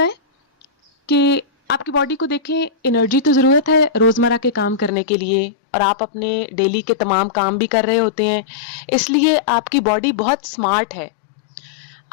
है कि आपकी बॉडी को देखें, एनर्जी तो ज़रूरत है रोज़मर्रा के काम करने के लिए और आप अपने डेली के तमाम काम भी कर रहे होते हैं, इसलिए आपकी बॉडी बहुत स्मार्ट है।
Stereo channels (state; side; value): drops out; right; at 4.9 s